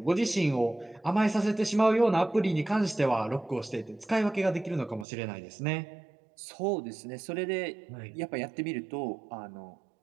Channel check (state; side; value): drops out; left; at 5.1 s